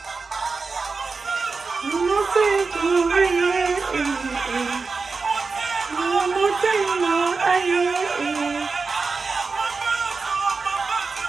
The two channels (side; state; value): left; quieter; 4.4 dB